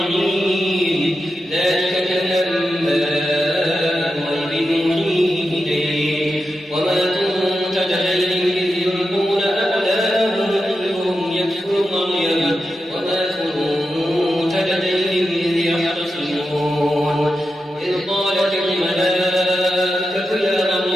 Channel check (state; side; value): normal; both; correlation 0.89